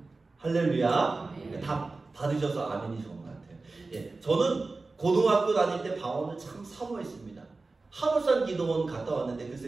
할렐루야. 다 받으셔서 아멘이 좋은 것 같아요. 예, 저는 고등학교 다닐 때 방언을 참 사모했습니다. 하물산 기도원 갔다 왔는데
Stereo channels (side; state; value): left; quieter; 3.6 dB